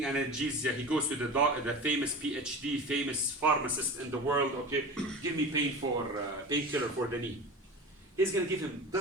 analgesia, he goes to the famous PhD, famous pharmacist in the world, okay, give me painkiller for the knee. He's going to give him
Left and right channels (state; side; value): normal; both; correlation 0.32